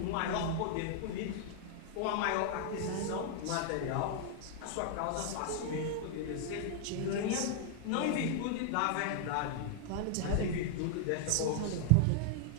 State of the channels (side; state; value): both; different; correlation -0.01